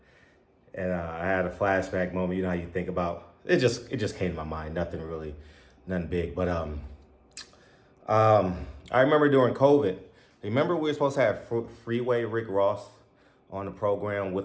had a flashback moment. You know how you think about it. Just came to my mind. Nothing big. But I remember during COVID. Remember we were supposed to have Freeway Rick Ross on the program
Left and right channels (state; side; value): identical; both; correlation 1.00